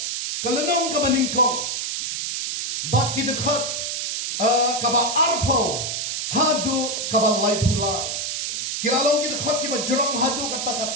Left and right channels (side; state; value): right; noise; hiss, 2 dB below the sound